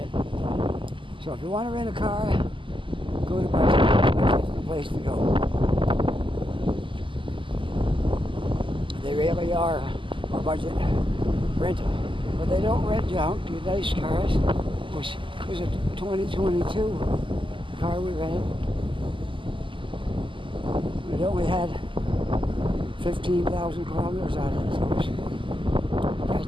So if you want to rent a car, go to budget. Budget's the place to go. They really are a budget rental. But they don't rent junk, the nice cars, which was a 2022 car we rented. It only had 15,000 kilometers on it, so it was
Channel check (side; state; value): left; late; 0.25 ms